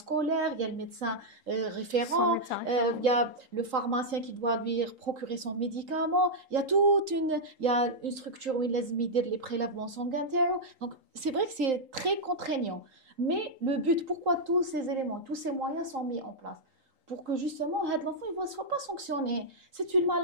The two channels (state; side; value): late; left; 3.8 ms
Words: il y a le médecin référent, il y a le pharmacien qui doit lui procurer son médicament. Il y a une structure où il laisse les prélèvements sanguins. Donc, c'est vrai que c'est très contraignant. Mais le but, pourquoi tous ces éléments, tous ces moyens sont mis en place? Pour que justement l'enfant ne soit pas sanctionné. C'est une